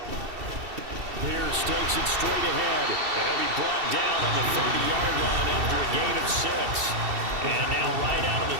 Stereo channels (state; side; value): late; left; 2.7 ms